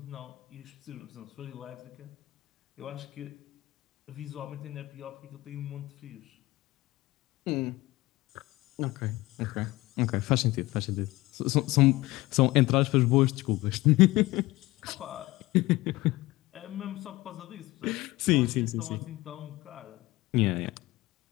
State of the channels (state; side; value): quieter; right; 19.4 dB